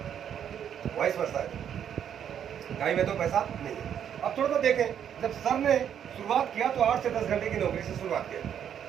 वाइस वर्सा है। टाइम है तो पैसा नहीं है। अब थोड़ा सा देखें, जब सर ने शुरुआत किया तो 8 से 10 घंटे की नौकरी से शुरुआत किया।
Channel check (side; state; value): left; quieter; 9.0 dB